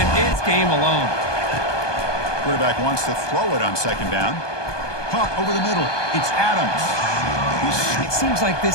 it's game alone. Quarterback wants to throw it on 2nd down. Caught over the middle. It's Adams. It seems like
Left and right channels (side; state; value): right; late; 1.2 ms